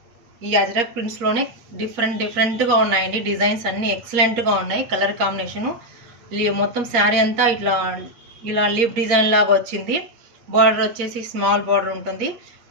ఈ అజరక్ ప్రింట్స్ లోనే డిఫరెంట్ గా ఉన్నాయండి. డిజైన్స్ అన్ని ఎక్సలెంట్ గా ఉన్నాయి. కలర్ కాంబినేషన్ మొత్తం శారీ అంతా ఇలా లీఫ్ డిజైన్ లాగా వచ్చింది. బార్డర్ వచ్చేసి స్మాల్ బార్డర్ ఉంటుంది.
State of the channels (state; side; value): late; left; 8.5 ms